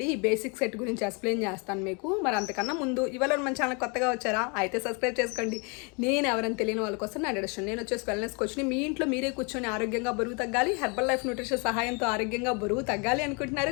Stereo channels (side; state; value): right; quieter; 33.3 dB